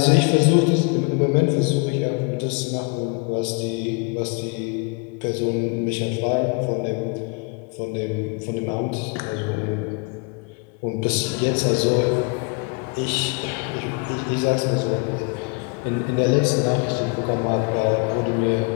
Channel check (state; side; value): quieter; right; 32.4 dB